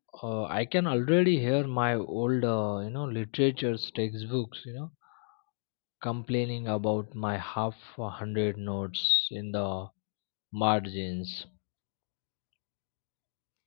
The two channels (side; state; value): right; silent; digital silence